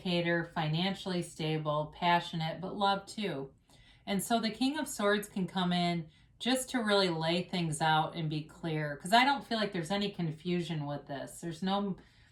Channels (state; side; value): identical; both; correlation 1.00